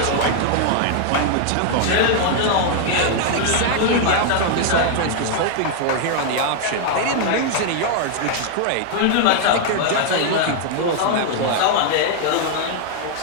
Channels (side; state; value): both; different; correlation 0.00